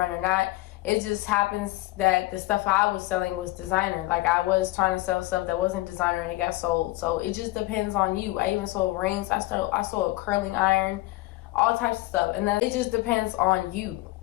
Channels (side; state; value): right; quieter; 19.3 dB